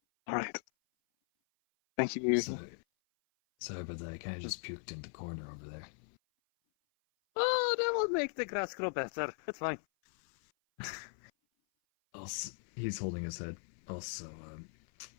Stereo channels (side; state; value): right; silent; 52 dB below the other